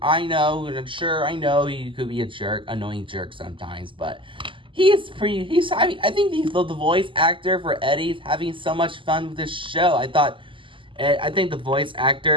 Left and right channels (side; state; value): left; late; 0.25 ms